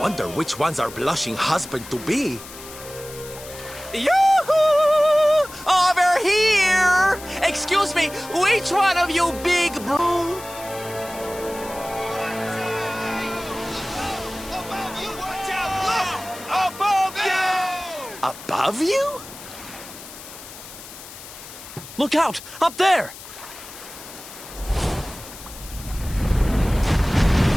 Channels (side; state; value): left; noise; hiss, 15 dB below the sound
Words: which one's our blushing husband-to-be. Yoo-hoo! Over here! Excuse me, which one of you big bro? Above you, watch out! Look! Above you! Above you? Look out! Up there!